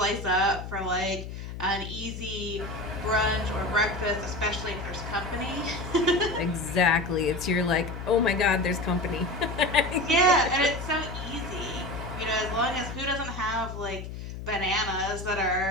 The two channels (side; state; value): left; noise; hum, 9 dB below the sound